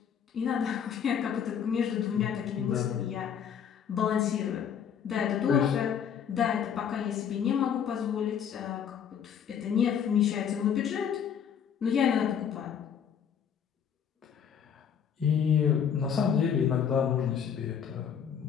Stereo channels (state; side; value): quieter; right; 8.0 dB